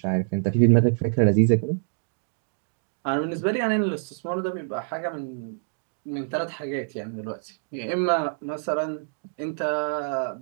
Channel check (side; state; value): left; silent; digital silence